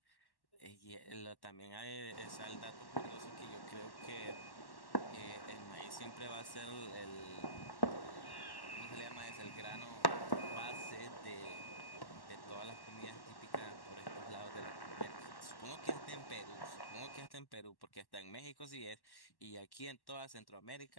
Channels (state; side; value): late; right; 1.1 ms